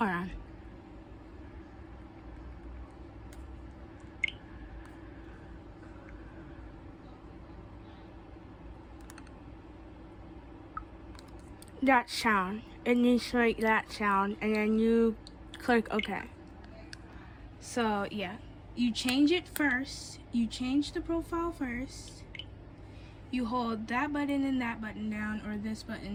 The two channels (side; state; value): both; identical; correlation 1.00